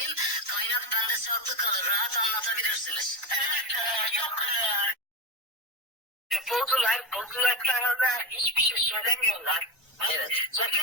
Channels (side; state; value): both; normal; correlation 0.17